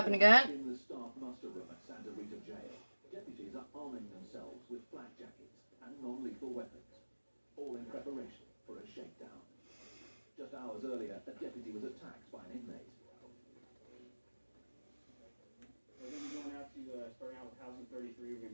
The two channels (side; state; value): both; inverted; correlation -1.00